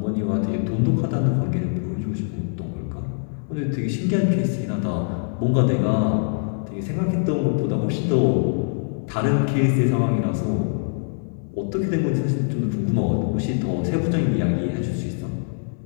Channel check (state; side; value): silent; right; digital silence